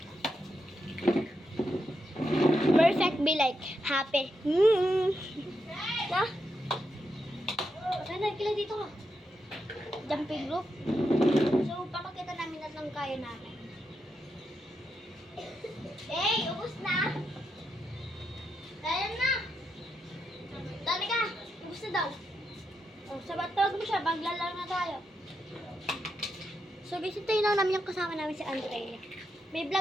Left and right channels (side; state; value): both; normal; correlation 0.84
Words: Perfect be like happy. Na? Sana, kila dito ka. Jumping rope. So, papakita namin at lang kaya namin. Hey, ubos na. Kaya na! Dali ka. Ubos na daw. Oh, sabat tawag mo siya, maglalaro na tayo. So, guys, ito yun lang namin yung kasama namin si Andrea. May